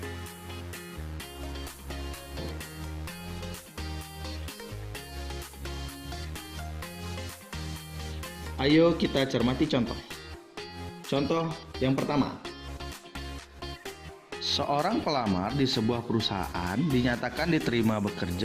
Ayo kita cermati contoh. Contoh yang pertama. Seorang pelamar di sebuah perusahaan dinyatakan diterima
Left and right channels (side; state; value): both; identical; correlation 1.00